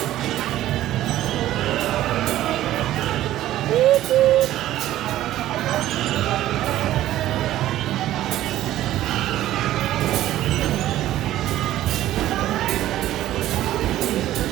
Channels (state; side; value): quieter; left; 13.9 dB